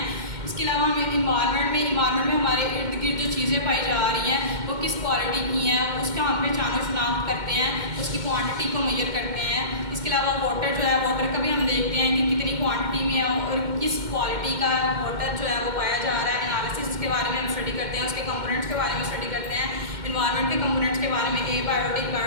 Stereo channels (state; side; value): late; left; 2.1 ms